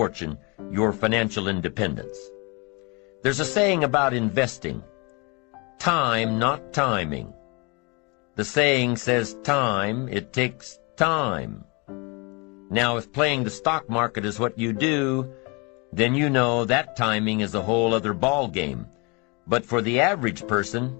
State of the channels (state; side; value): quieter; right; 29.9 dB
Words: your financial independence. There's a saying about investing. Time, not timing. The saying says time, it takes time. Now, if playing the stock market is what you do, then you know that timing is a whole other ball game. But for the average person,